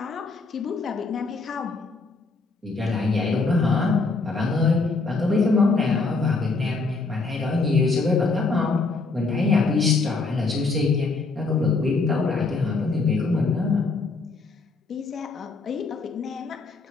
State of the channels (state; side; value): quieter; right; 3.9 dB